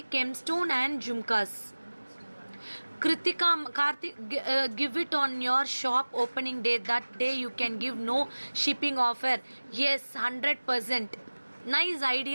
gemstone and jhumkas. Kritika Karthik, give it on your shop opening day. That day you can give no shipping offer. Yes, 100%. Nice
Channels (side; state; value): both; inverted; correlation -1.00